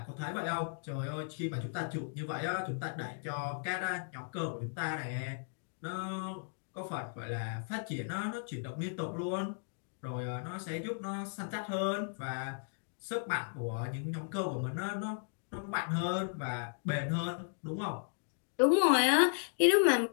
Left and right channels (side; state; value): right; silent; digital silence